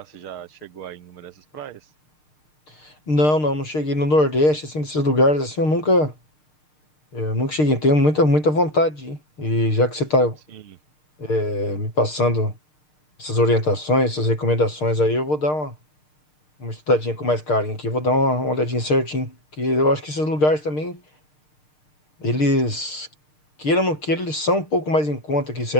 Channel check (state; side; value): late; right; 6.6 ms